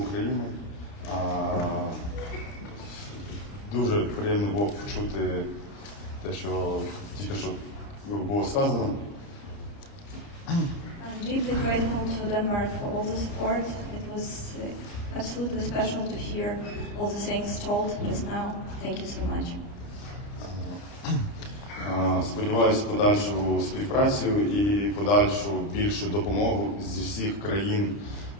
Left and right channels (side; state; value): right; late; 29 ms